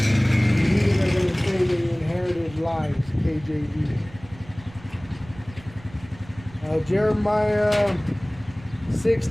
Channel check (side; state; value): right; noise; rumble, 20 dB below the sound